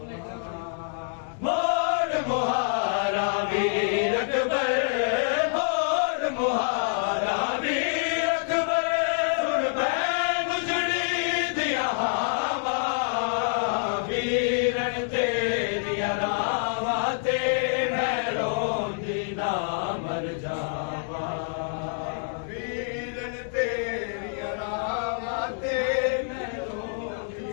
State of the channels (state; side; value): silent; right; 60 dB below the other